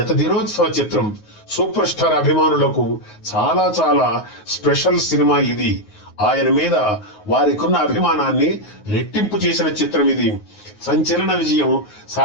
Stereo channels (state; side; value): late; right; 9.4 ms